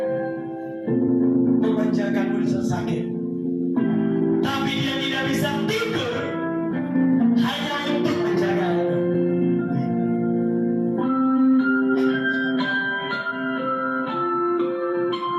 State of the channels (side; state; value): both; identical; correlation 1.00